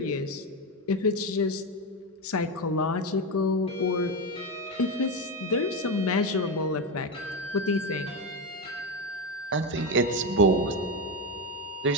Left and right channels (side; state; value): both; normal; correlation 0.13